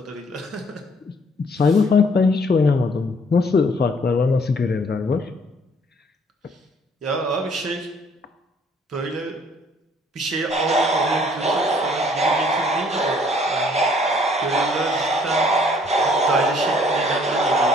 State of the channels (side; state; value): both; normal; correlation 0.61